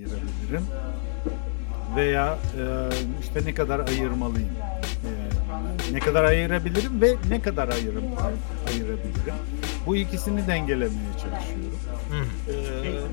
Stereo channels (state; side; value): silent; right; digital silence